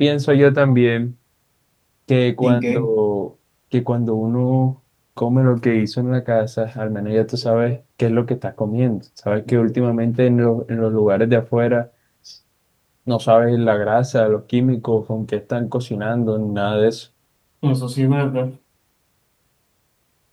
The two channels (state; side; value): identical; both; correlation 1.00